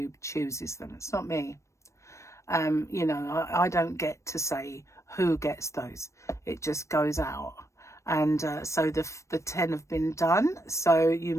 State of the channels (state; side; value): late; right; 0.14 ms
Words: chooses them. It's not me. I don't get to say who gets those. It just goes out. And so the 10 have been done. So you